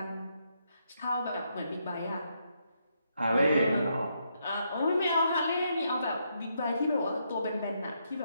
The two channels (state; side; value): inverted; both; correlation -0.78